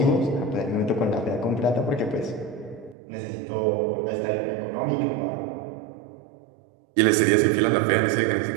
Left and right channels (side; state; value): left; drops out; at 3.0 s